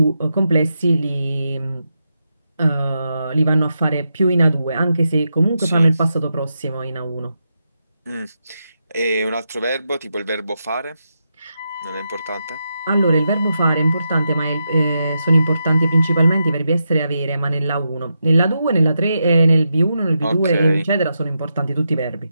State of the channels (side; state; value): both; inverted; correlation -0.86